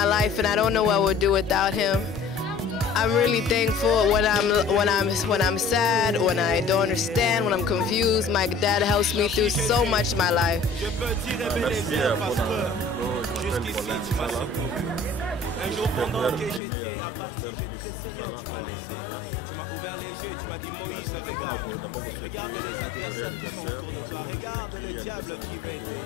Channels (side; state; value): right; drops out; at 16.6 s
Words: life and I don't know what I would do without him. I'm really thankful when I'm sad, when I don't understand, when I'm confused. My dad helps me through so much in my life. Un jour pendant que j'étais à partir, j'ai décidé de me laisser. Tu m'as ouvert les yeux, tu m'as dit Moïse, regarde. Regarde les adversaires qui sont autour de toi. Regarde le diable qui veut te